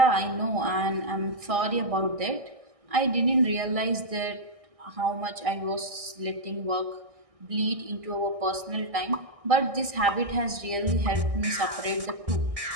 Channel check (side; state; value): left; late; 1.6 ms